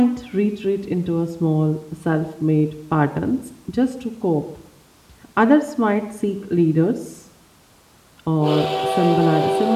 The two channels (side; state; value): both; identical; correlation 1.00